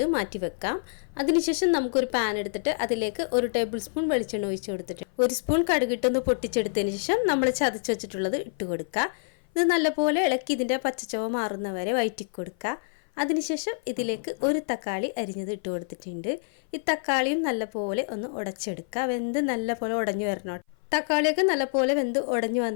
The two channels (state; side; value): silent; right; 56 dB below the other